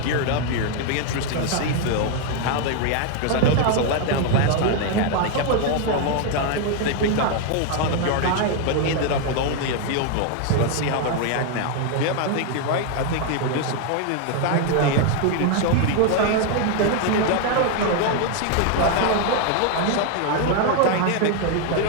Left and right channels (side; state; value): both; different; correlation 0.01